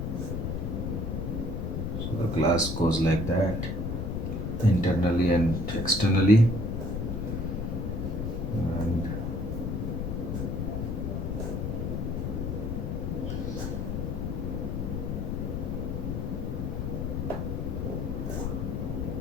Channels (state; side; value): noise; left; rumble, 1 dB below the sound